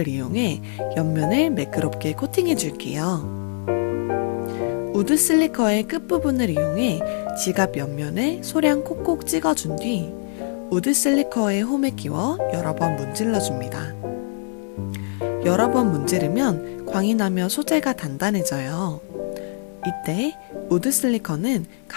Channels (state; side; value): silent; right; digital silence